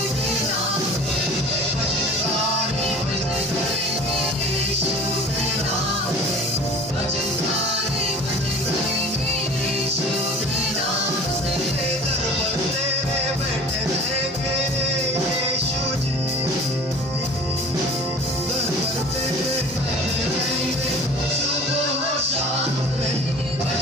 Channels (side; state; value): both; normal; correlation 0.43